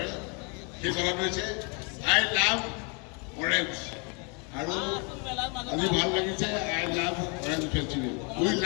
সেই কথাটো হৈছে আই লাভ অৰেঞ্জ আৰু আজি ভাল লাগিছে I love orange festival we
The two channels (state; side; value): quieter; right; 34.2 dB